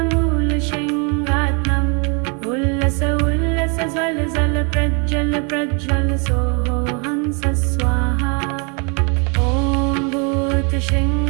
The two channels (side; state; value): left; quieter; 35.1 dB